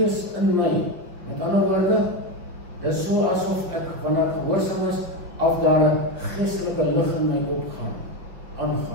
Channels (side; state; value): left; late; 5.7 ms